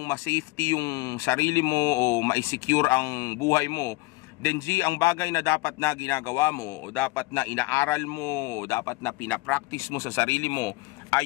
ma-safety yung sarili mo o ma-secure ang buhay mo, then G, ang bagay na dapat na ginagawa mo o dapat na inaaral mo o dapat na pinapractice mo sa sarili mo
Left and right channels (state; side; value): quieter; right; 22.0 dB